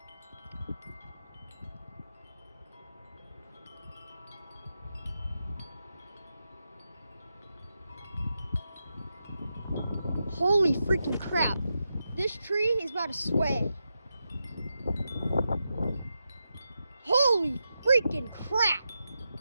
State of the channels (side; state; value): both; inverted; correlation -0.88